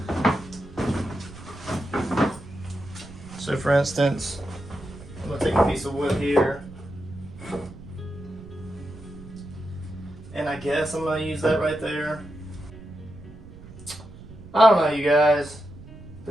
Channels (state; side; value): noise; right; rumble, 17 dB below the sound